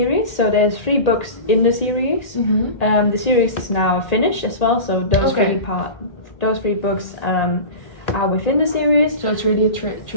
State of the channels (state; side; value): late; right; 1.8 ms